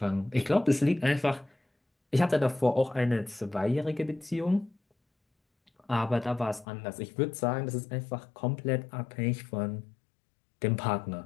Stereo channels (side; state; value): right; drops out; at 6.7 s